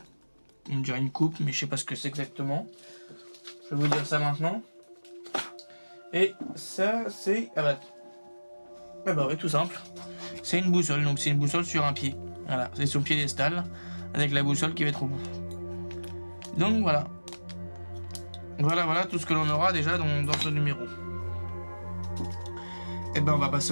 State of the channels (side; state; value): both; inverted; correlation -1.00